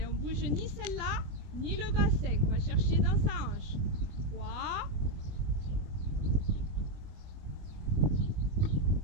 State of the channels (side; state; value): left; late; 20 ms